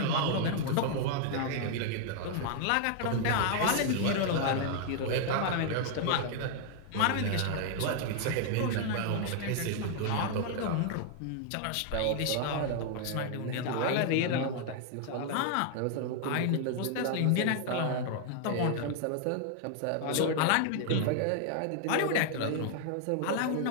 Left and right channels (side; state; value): both; different; correlation 0.00